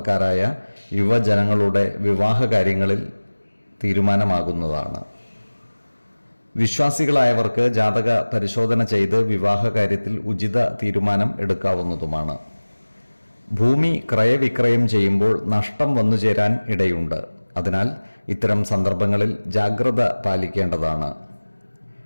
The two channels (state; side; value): inverted; both; correlation -1.00